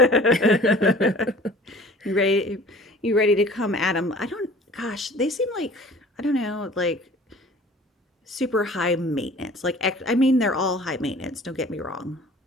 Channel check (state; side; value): normal; both; correlation 0.48